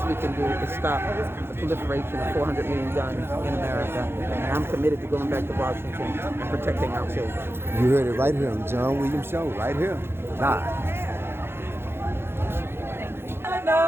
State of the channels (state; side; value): late; left; 0.11 ms